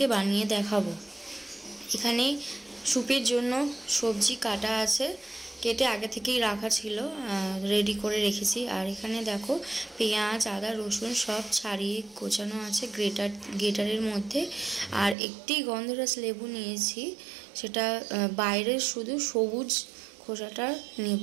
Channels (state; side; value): drops out; left; at 15.2 s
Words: বানিয়ে দেখাবো। এখানে স্যুপের জন্য সবজি কাটা আছে, কেটে আগে থেকেই রাখা ছিল, রেডি করে রেখেছি। আর এখানে দেখো পেঁয়াজ, আদা, রসুন সব ছাড়িয়ে কোচানো আছে গ্রেটারের মধ্যে। আর একটি গন্ধরাজ লেবু নিয়েছি, সেটা বাইরের শুধু সবুজ খোসাটা নেব